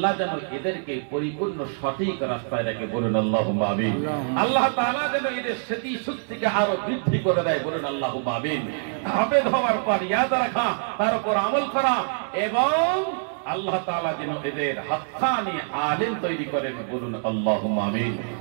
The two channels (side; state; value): left; silent; 62 dB below the other